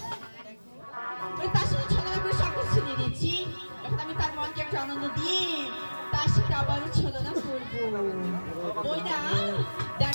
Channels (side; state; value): both; inverted; correlation -1.00